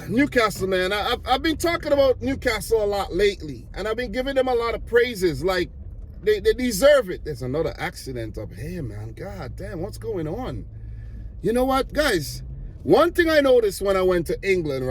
Newcastle, man. I've been talking about Newcastle a lot lately, and I've been giving them a lot of praises. Like, they deserve it. There's another accident up here, man. God damn, what's going on? You know what, guys? One thing I noticed when I went to England,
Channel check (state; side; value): identical; both; correlation 1.00